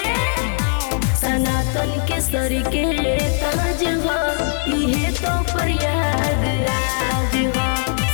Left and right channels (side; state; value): right; silent; 58 dB below the other